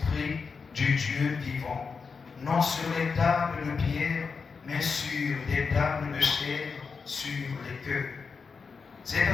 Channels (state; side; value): quieter; right; 5.2 dB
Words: du Dieu vivant, non sur les tables de pierre, mais sur des tables de chair, sur les cœurs. Cette